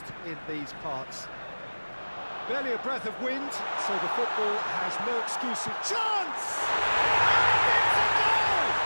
in these parts. Barely a breath of wind, so the football has no excuses. Chance! And it's a goal!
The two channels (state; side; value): inverted; both; correlation -1.00